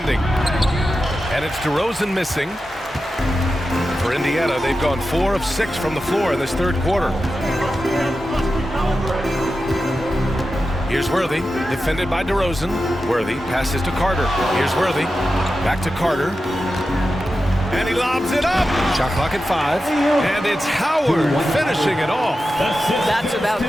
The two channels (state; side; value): normal; both; correlation 0.91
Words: And it's DeRozan missing. For Indiana, they've gone 4 of 6 from the floor in this third quarter. Here's Worthy, defended by DeRozan. Worthy passes to Carter. Here's Worthy. Back to Carter. And he lobs it up. Shot clock at 5. And it's Howard finishing it off. That's about